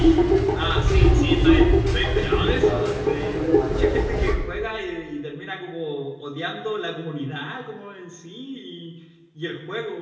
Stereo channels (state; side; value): identical; both; correlation 1.00